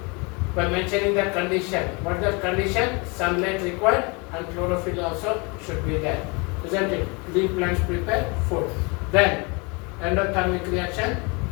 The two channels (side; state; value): right; quieter; 29.7 dB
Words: By mentioning the condition. What is the condition? Sunlight required and chlorophyll also should be there. Isn't it? Green plants prepare food. Then endothermic reaction,